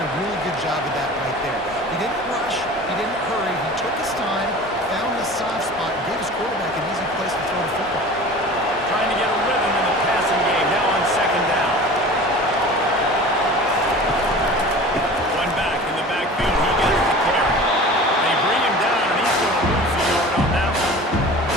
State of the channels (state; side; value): normal; both; correlation 0.39